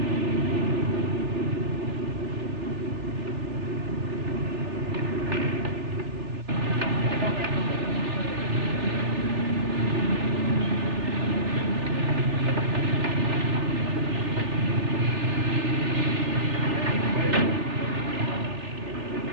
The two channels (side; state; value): left; late; 3.4 ms